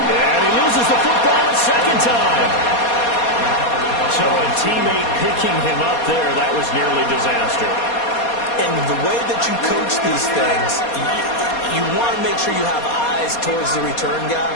And he loses the football a second time. So a teammate picking him up there, that was nearly disaster. And the way that you coach these things, you want to make sure you have eyes towards the return guy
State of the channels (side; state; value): right; late; 4.2 ms